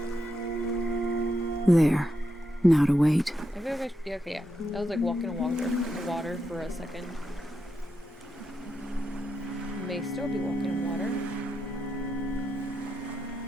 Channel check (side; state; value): both; normal; correlation 0.85